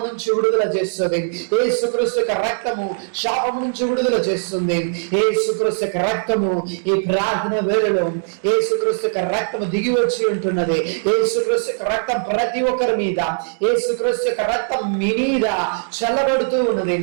నుంచి విడుదల చేస్తుంది. యేసుక్రీస్తు యొక్క రక్తము శాపము నుంచి విడుదల చేస్తుంది. యేసుక్రీస్తు యొక్క రక్తము ఈ ప్రార్థన వేళలో యేసుక్రీస్తు యొక్క రక్తము దిగి వచ్చి ఉంటున్నది. యేసుక్రీస్తు యొక్క రక్తం ప్రతి ఒక్కరి మీద, యేసుక్రీస్తు యొక్క రక్తం మీ మీద చల్లబడుతూ ఉన్నది.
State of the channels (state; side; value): silent; left; digital silence